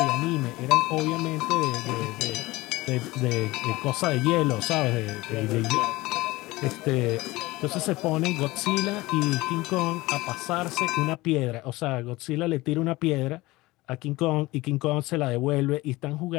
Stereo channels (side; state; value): right; quieter; 20.2 dB